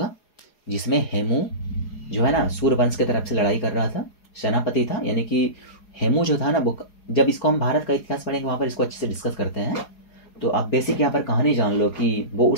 जिसमें हेमू जो है ना सूर्यवंश की तरफ से लड़ाई कर रहा था, सेनापति था, यानी कि हेमू जो था ना, वो जब इसको हम भारत का इतिहास पढ़ेंगे वहाँ पर इसको अच्छे से डिस्कस करते हैं। तो आप बेसिक यहाँ पर कहानी जान लो कि वो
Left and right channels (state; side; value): late; right; 4.8 ms